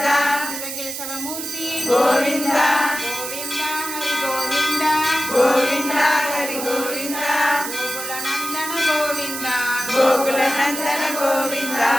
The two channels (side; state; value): right; noise; hiss, 6 dB below the sound